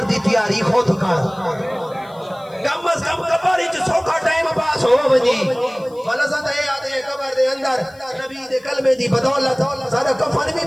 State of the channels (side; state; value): left; noise; hiss, 29 dB below the sound